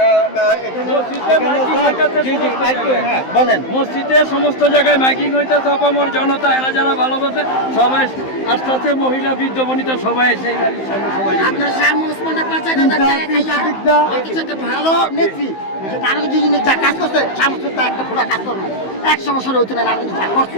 বলেন, মসজিদে সমস্ত জায়গায় মাইকিং হইতেছে, অপামর জনতা এরা যারা ভালোবাসে সবাই আস্তে আস্তে, মহিলা বৃদ্ধ বনিতা সবাই সেই বাড়ির সামনে সবাই। আপনার ভালো নেত্রী যা কাজ করছে, একটা পুরো কাজ করবে 100 বছর হইতে না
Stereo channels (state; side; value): late; right; 15 ms